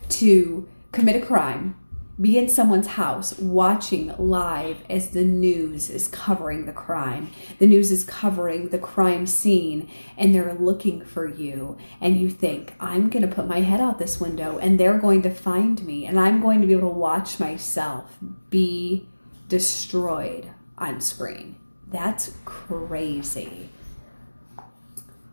to commit a crime, be in someone's house watching live as the news is covering the crime. The news is covering the crime scene, and they're looking for you. And you think, I'm going to put my head out this window, and they're going to find me, and I'm going to be able to watch myself be destroyed on screen. That's crazy.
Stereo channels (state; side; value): inverted; both; correlation -1.00